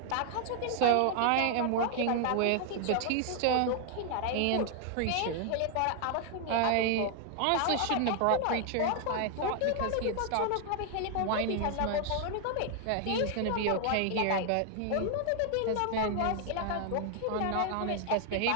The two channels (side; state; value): both; different; correlation 0.00